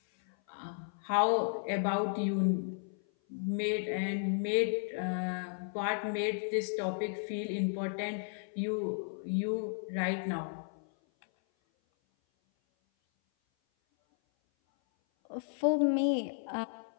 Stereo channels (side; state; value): right; silent; 55 dB below the other